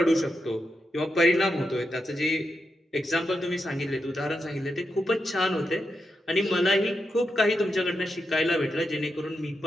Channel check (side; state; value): both; normal; correlation 0.86